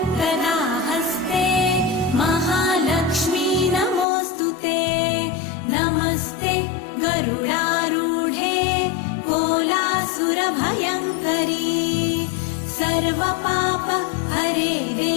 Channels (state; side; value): drops out; right; at 4.0 s